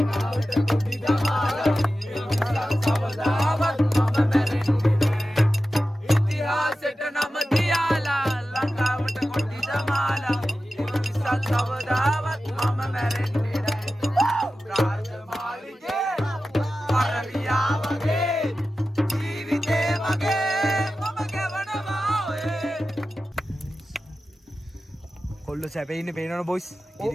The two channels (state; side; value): normal; both; correlation 0.93